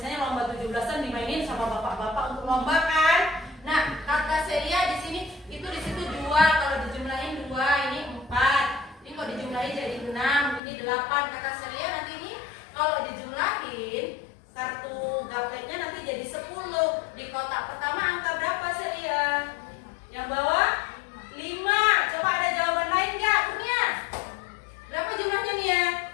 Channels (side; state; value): right; drops out; at 10.6 s